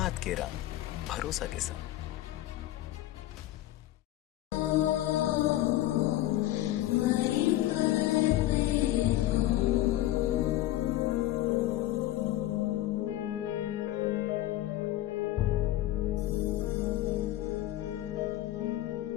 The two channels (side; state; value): right; quieter; 14.9 dB